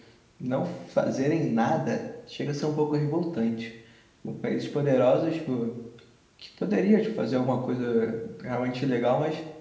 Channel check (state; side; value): identical; both; correlation 1.00